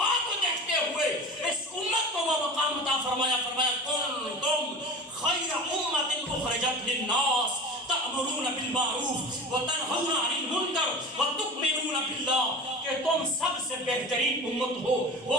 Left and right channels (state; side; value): normal; both; correlation 0.34